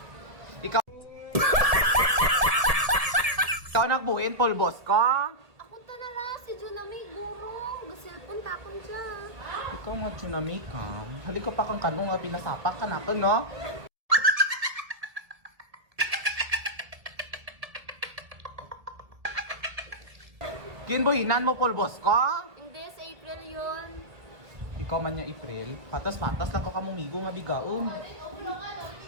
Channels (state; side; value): late; left; 1.7 ms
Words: Ikaw. Ikaw nagbuhin pulbos ko? Ako tanara si Junami Gurong. Gasilpon takon dyan. Ikaw nga tsunami ka. Hali ko pa kang kanong nga pinasapak ka na to, no? Kinbuhinan mo pulbos ko? Hindi, sa April yun. Ikaw man yung April. Patas-patas lang ka kamumigo nga bigaon.